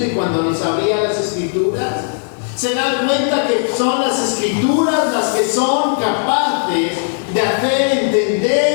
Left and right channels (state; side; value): silent; right; digital silence